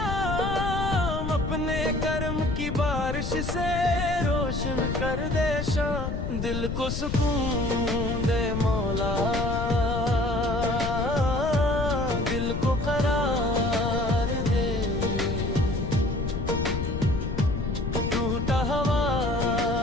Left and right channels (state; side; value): noise; left; rumble, 3 dB below the sound